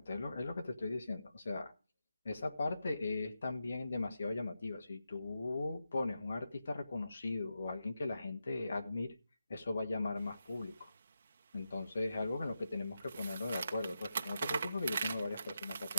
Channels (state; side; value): inverted; both; correlation -0.87